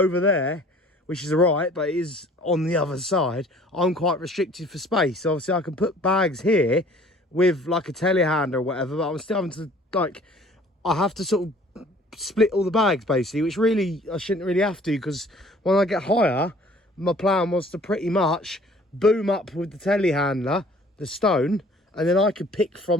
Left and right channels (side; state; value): both; normal; correlation 0.53